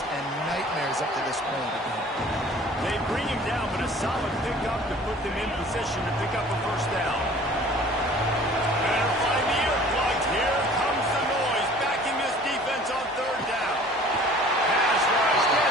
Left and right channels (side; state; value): both; normal; correlation 0.49